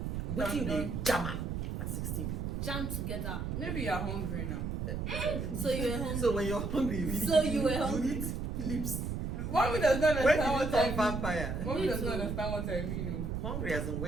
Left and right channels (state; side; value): noise; right; rumble, 2 dB below the sound